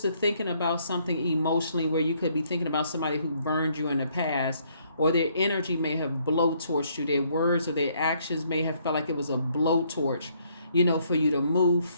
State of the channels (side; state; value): both; inverted; correlation -0.68